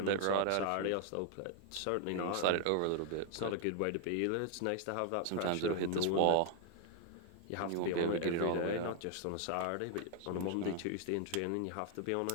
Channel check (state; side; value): different; both; correlation 0.00